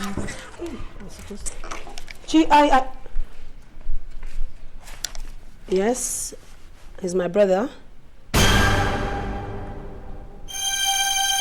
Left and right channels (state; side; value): identical; both; correlation 1.00